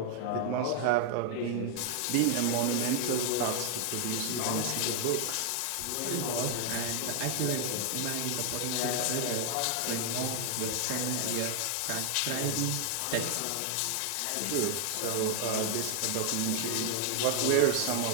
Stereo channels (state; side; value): different; both; correlation 0.00